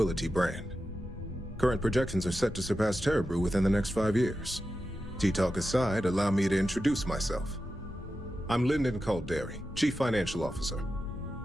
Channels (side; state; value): both; normal; correlation 0.91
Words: brand. Current projections are set to surpass Terra Brew within the next 5 years. Tea-talk aside, allow me to introduce myself. I'm Lyndon Calderi, Chief Financial Officer.